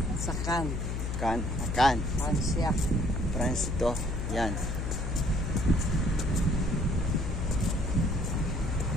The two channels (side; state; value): left; noise; hum, 2 dB below the sound